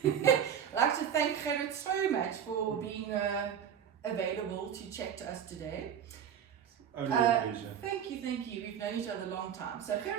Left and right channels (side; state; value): left; quieter; 8.7 dB